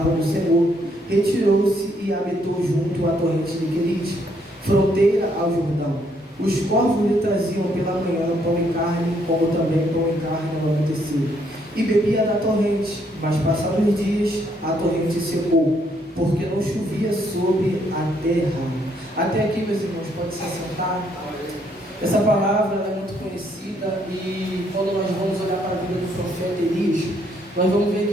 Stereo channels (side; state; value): both; normal; correlation 0.71